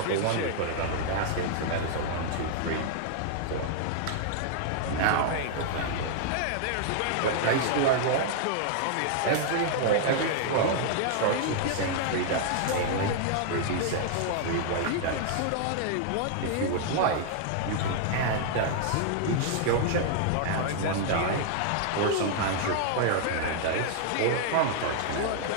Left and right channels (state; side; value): different; both; correlation -0.01